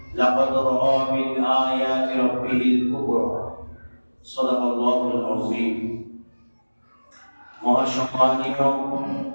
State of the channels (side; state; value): both; inverted; correlation -1.00